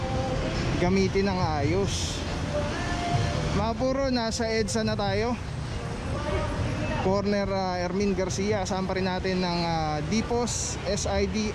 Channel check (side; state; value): both; identical; correlation 1.00